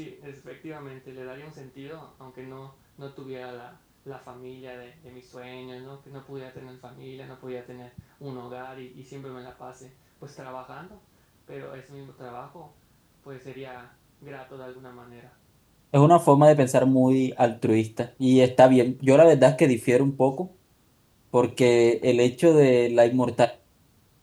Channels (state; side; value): identical; both; correlation 1.00